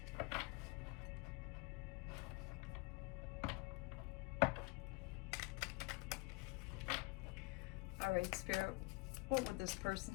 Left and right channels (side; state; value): right; quieter; 26.6 dB